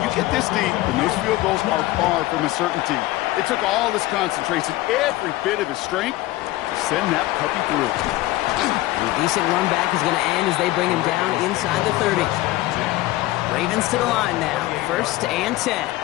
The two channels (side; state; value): right; quieter; 17.4 dB